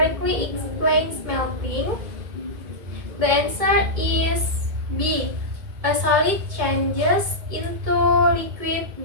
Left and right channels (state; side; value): late; left; 2.2 ms